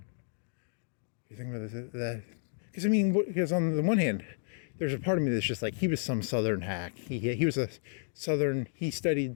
You thinking about this? That? Because on the one hand, there's a part of me that's just like, he was some Southern hack. He was a Southern. He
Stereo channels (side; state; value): right; silent; 57 dB below the other